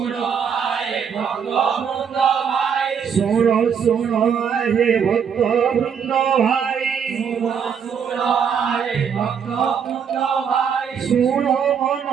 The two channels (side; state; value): left; quieter; 7.2 dB